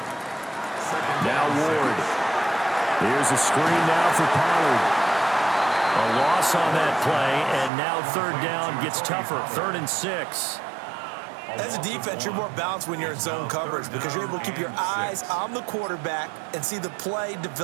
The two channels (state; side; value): drops out; left; at 7.7 s